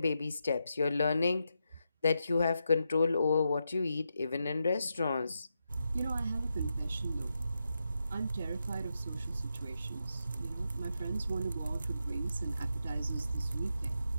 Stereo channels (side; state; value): both; inverted; correlation -0.85